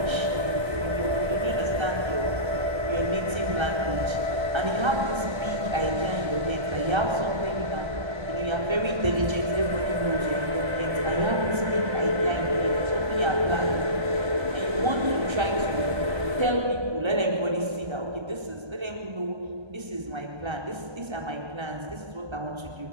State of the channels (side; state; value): left; late; 1.3 ms